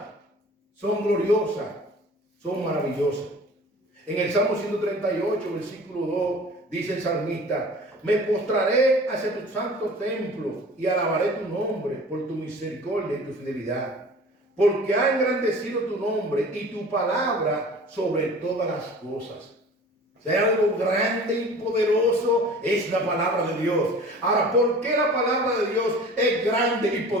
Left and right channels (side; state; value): both; normal; correlation 0.43